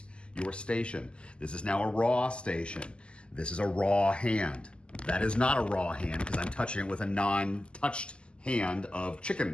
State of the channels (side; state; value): right; late; 0.051 ms